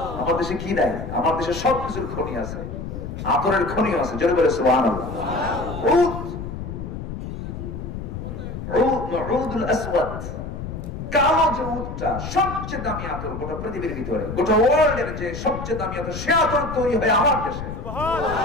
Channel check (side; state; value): left; noise; rumble, 7 dB below the sound